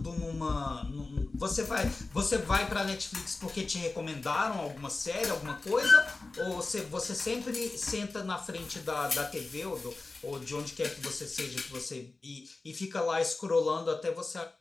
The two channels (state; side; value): quieter; right; 3.5 dB